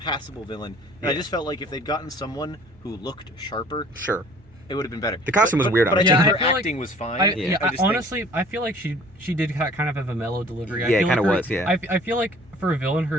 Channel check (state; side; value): noise; right; hum, 27 dB below the sound